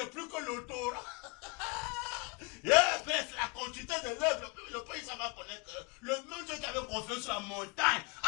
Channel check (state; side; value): quieter; right; 28.1 dB